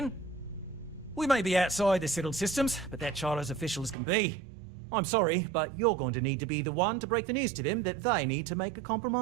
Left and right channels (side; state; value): left; drops out; at 4.0 s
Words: We may be outside the settled systems, but that charter's official as can be. I'm sorry, but you're going to need to be the one to break the news to them that they need to make a